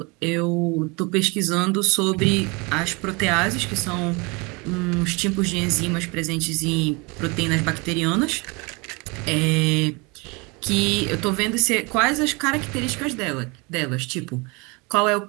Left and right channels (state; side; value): quieter; left; 28.2 dB